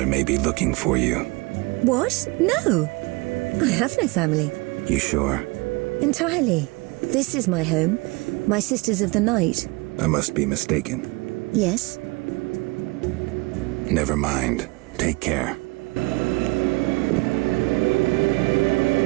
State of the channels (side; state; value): left; quieter; 26.1 dB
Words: may be looking for you. What? No! I have no family. You sure? Entirely. This is my home. My Sisters of the Night. I must be mistaken. Yes? Never mind. Take care.